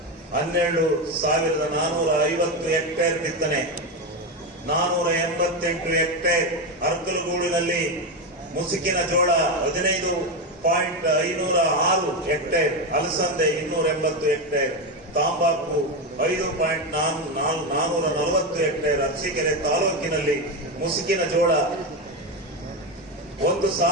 12,450 ಹೆಕ್ಟೇರ್ ಬಿತ್ತನೆ, 488 ಹೆಕ್ಟೇರ್. ಅರ್ಕಲಗೂಡಿನಲ್ಲಿ ಮುಸುಕಿನ ಜೋಳ 15.506 ಹೆಕ್ಟೇರ್, ಅಲಸಂದೆ 280 ಹೆಕ್ಟೇರ್, ತಾಂಬಾಕು 5.440 ಹೆಕ್ಟೇರ್. ಅರಸೀಕೆರೆ ತಾಲೂಕಿನಲ್ಲಿ ಮುಸುಕಿನ ಜೋಳ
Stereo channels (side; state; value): both; normal; correlation 0.12